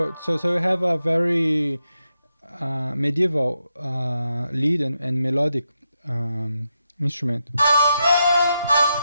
you have a very medieval lead and melodic instrument.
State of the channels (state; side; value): inverted; both; correlation -0.85